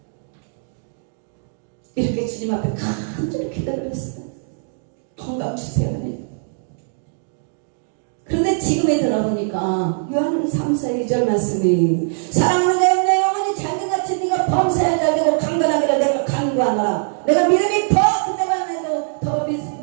이렇게 주님 앞에 간절히 기도를 했어요. 건강 주세요. 하나님. 그런데 지금에 들어보니까 요한 3서 2절 말씀이 사랑하는 내 영혼이 잘된같이 네가 범사에 잘되고 강건하기를 내가 간구하노라. 내가 믿음이 더 그때만 해도 더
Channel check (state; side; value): silent; left; digital silence